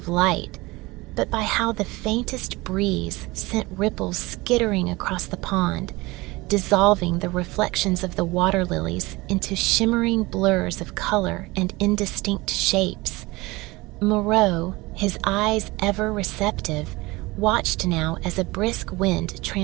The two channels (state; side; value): quieter; left; 22.0 dB